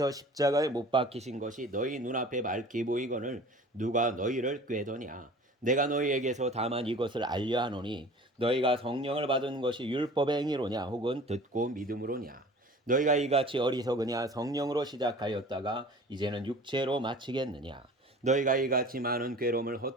십자가에 못 박히신 것이 너희 눈앞에 밝히 보이거늘 누가 너희를 꾀더냐. 내가 너희에게서 다만 이것을 알려 하노니 너희가 성령을 받은 것이 율법의 행위로냐 혹은 듣고 믿음으로냐. 너희가 이같이 어리석으냐. 성령으로 시작하였다가 이제는 육체로 마치겠느냐. 너희가 이같이 많은 괴로움을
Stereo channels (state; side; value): normal; both; correlation 0.43